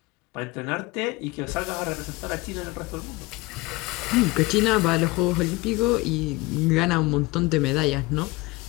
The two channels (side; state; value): right; quieter; 21.7 dB